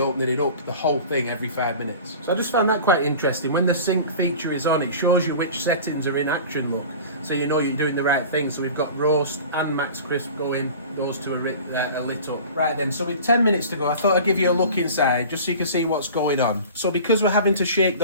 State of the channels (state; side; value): inverted; both; correlation -0.39